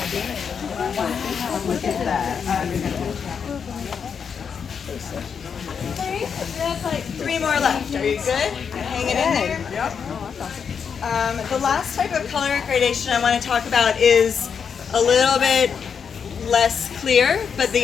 Look at that. That's like 3 more left. Are you good? Hanging in there? Yep. The last type of color gradation I want to talk about is a little bit less clear, but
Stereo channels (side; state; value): right; quieter; 6.7 dB